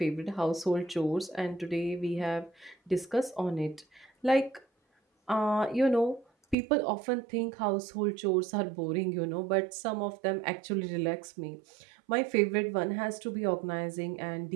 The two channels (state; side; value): drops out; left; at 6.6 s